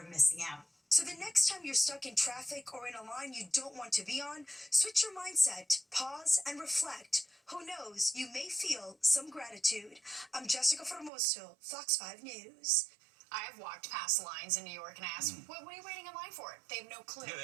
of missing out. So the next time you're stuck in traffic or in a line you don't want to be on, switch your mindset, pause, and reflect. Who knows, you may feel some gratitude. I'm Jessica Formoso, Fox 5 News. I've walked past lines in New York and asked, what are you waiting in line for? They have no clue. Yeah, they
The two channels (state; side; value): drops out; left; at 11.1 s